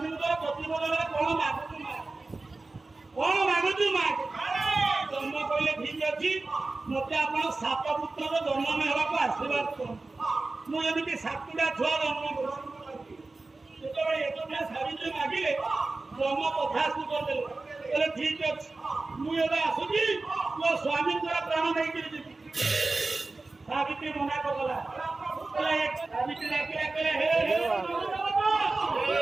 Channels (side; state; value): left; quieter; 3.4 dB